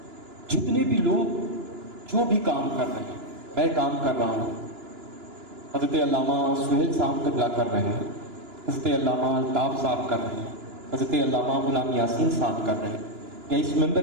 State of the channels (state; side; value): late; left; 2.9 ms